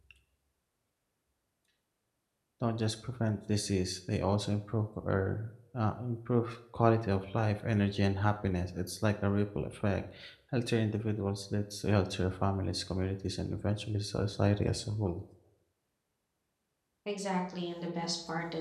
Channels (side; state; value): both; identical; correlation 1.00